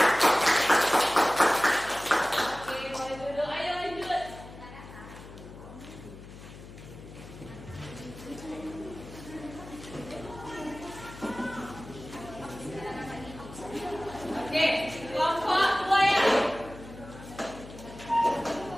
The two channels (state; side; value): noise; left; hum, 16 dB below the sound